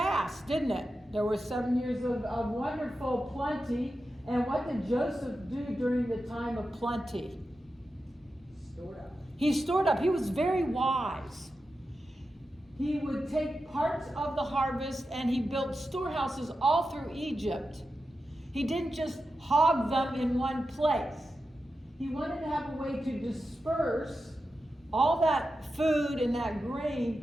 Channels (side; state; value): both; normal; correlation 0.90